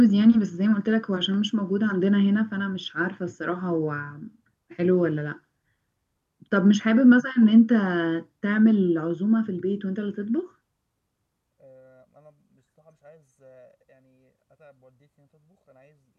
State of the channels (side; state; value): both; identical; correlation 1.00